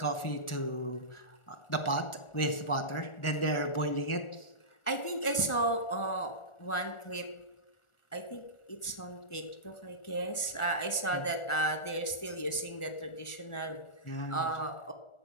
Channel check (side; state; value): right; late; 1.4 ms